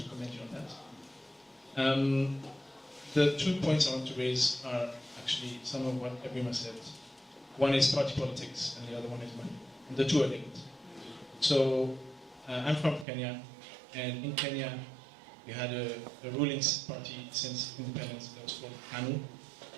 commend you on that. The 2 points I want to raise are actually some of what Ebima said. One is party politics, and the other one is money. And the two are linked. So, I'm from Kenya, and in Kenya, we had a ruling party since independence that was called KANU.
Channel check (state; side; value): drops out; left; at 13.1 s